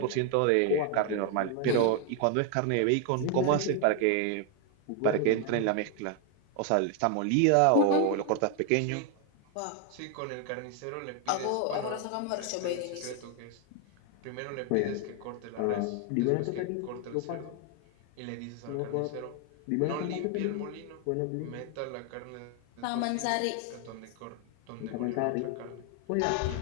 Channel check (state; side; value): different; both; correlation 0.00